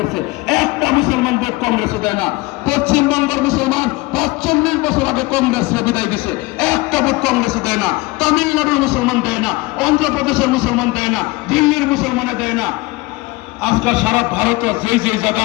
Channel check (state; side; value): quieter; right; 22.3 dB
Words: একটা মুসলমান ভোট কংগ্রেসে দেয় না। পশ্চিমবঙ্গের মুসলমান 45 বছর আগে কংগ্রেসরা বিদায় দিছে, একটা ভোট কংগ্রেসে দেয় না। তামিলনাড়ুর মুসলমান দেয় না, অন্ধ্রপ্রদেশের মুসলমান দেয় না, দিল্লির মুসলমানে দেয় না। আজকাল সারা ভারতে যেই